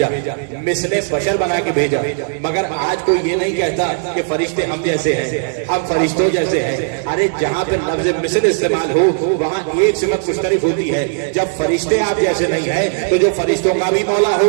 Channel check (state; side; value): silent; left; digital silence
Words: مثل بشر بنا کے بھیجا، مگر آج کوئی یہ نہیں کہتا کہ فرشتے ہم جیسے ہیں، ہم فرشتوں جیسے ہیں۔ ارے جہاں پہ لفظ مثل استعمال ہو وہاں ایک صفت مشترک ہوتی ہے، جب فرشتے آپ جیسے نہیں ہیں تو جو فرشتوں کا بھی مولا